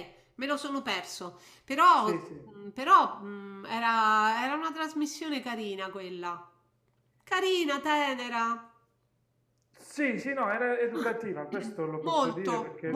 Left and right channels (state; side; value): identical; both; correlation 1.00